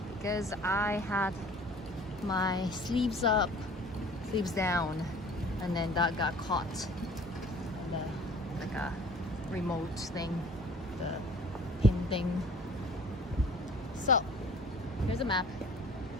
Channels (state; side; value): normal; both; correlation 0.48